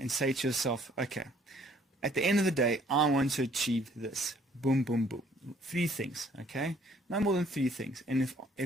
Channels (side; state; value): both; normal; correlation 0.61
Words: say to yourself, okay, at the end of the day, I want to achieve this. Boom, boom, boom. 3 things, okay? No more than 3 things. And